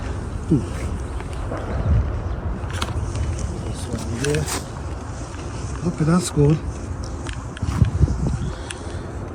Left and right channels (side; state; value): both; identical; correlation 1.00